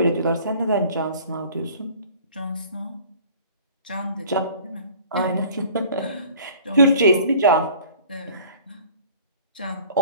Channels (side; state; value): both; inverted; correlation -0.49